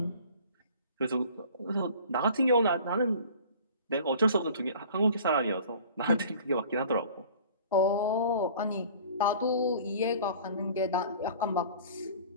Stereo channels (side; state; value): both; inverted; correlation -0.46